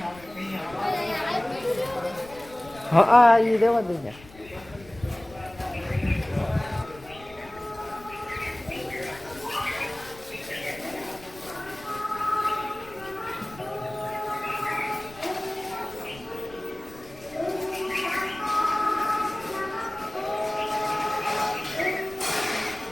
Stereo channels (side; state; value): left; noise; rumble, 20 dB below the sound